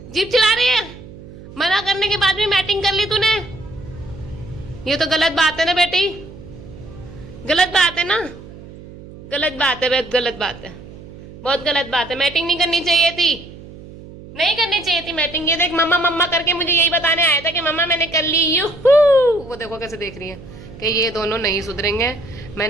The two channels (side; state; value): right; noise; hum, 17 dB below the sound